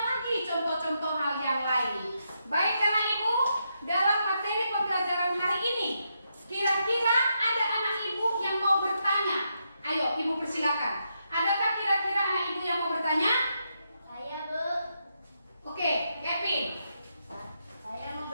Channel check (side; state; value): both; inverted; correlation -0.82